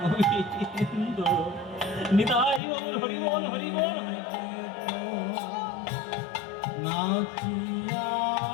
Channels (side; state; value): right; drops out; at 2.6 s